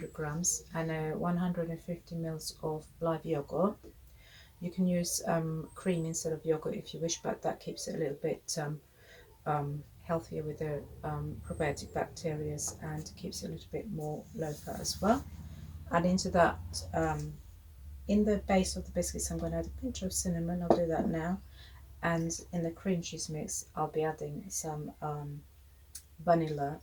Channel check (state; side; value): identical; both; correlation 1.00